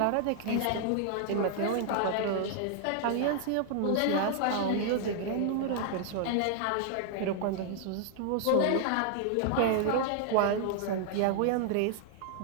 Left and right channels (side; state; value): both; different; correlation 0.00